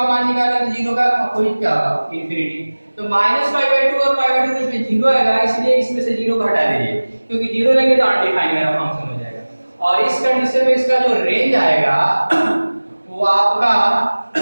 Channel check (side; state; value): both; inverted; correlation -1.00